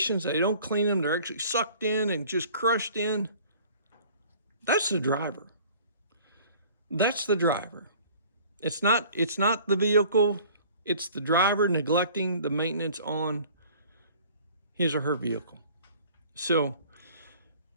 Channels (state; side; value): inverted; both; correlation -0.50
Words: They don't clean them. They're actually sucked in and just crushed in. That's the driver. That's the driver. It's not the vehicle. It's the driver neglecting the maintenance on his or her vehicle. So